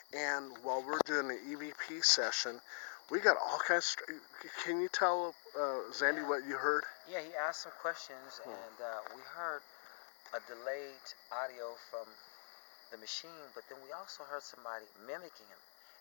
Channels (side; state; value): right; silent; digital silence